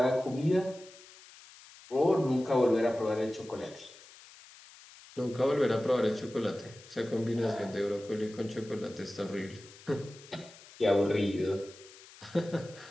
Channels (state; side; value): noise; left; hiss, 21 dB below the sound